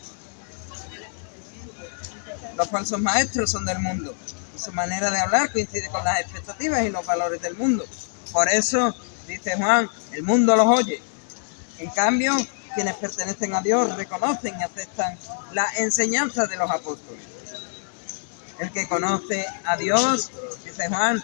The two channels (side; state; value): right; silent; digital silence